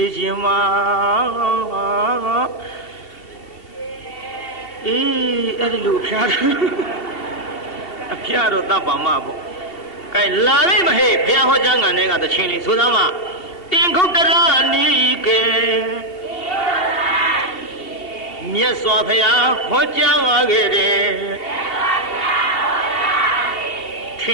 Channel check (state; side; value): late; right; 2.7 ms